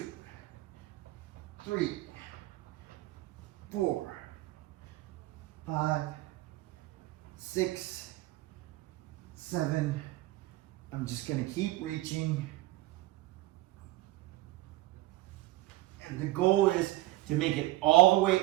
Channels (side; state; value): left; quieter; 18.0 dB